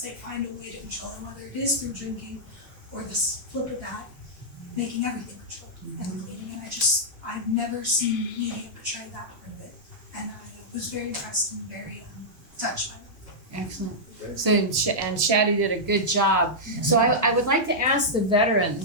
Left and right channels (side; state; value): both; normal; correlation -0.10